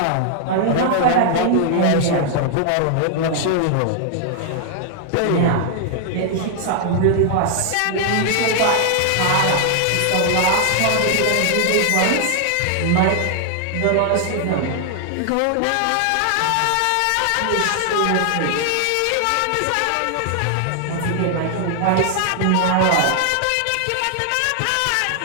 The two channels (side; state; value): both; different; correlation 0.00